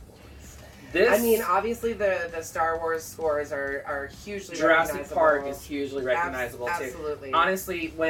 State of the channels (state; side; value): identical; both; correlation 1.00